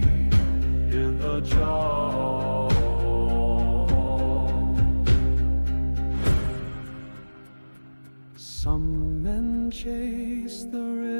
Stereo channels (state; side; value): inverted; both; correlation -1.00